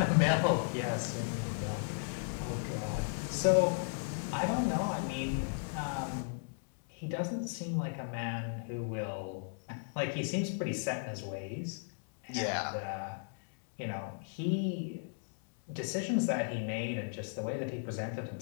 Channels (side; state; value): right; silent; digital silence